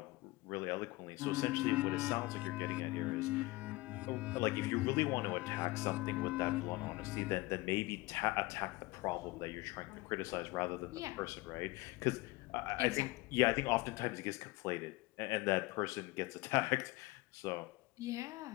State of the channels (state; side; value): quieter; right; 21.5 dB